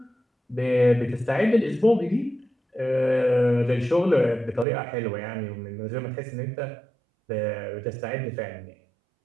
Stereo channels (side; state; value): left; drops out; at 4.7 s